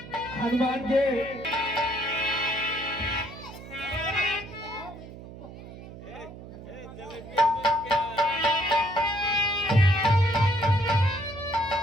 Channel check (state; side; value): noise; right; hum, 15 dB below the sound